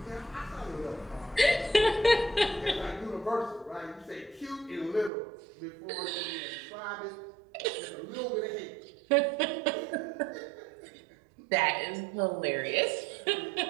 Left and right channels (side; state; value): left; drops out; at 5.1 s